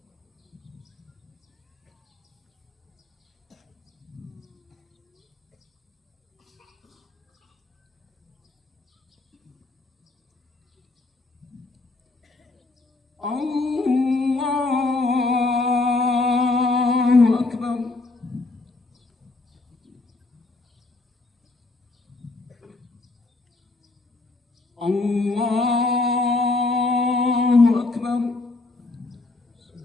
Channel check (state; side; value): quieter; right; 3.3 dB